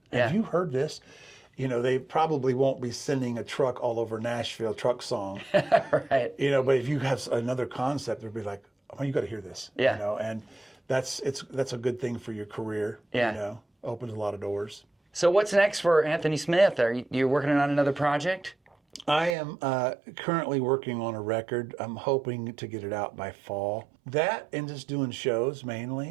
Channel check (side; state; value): left; drops out; at 19.4 s